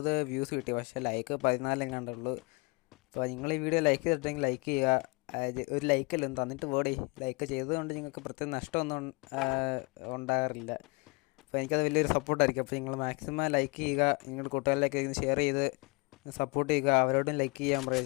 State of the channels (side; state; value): right; quieter; 28.7 dB